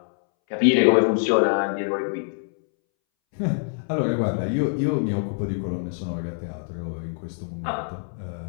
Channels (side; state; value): right; silent; 62 dB below the other